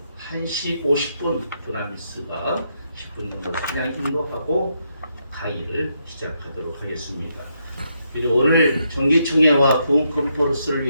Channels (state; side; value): inverted; both; correlation -0.79